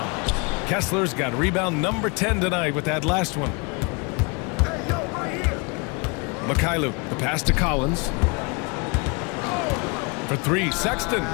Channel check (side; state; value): right; quieter; 30.8 dB